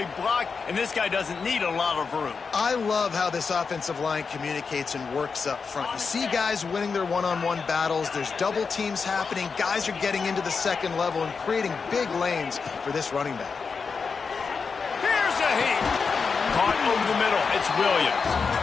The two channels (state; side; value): quieter; right; 5.2 dB